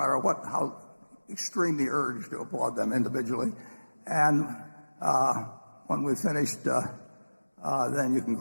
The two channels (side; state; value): both; inverted; correlation -1.00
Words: how extremely urged to applaud them individually. And when we've finished, then you can